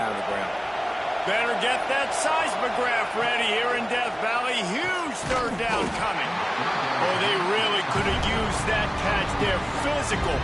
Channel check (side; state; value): both; identical; correlation 1.00